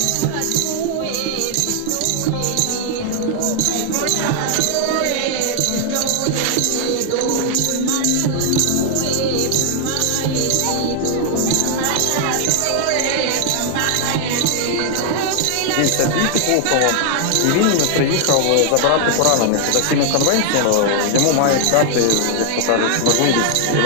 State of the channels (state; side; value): different; both; correlation 0.00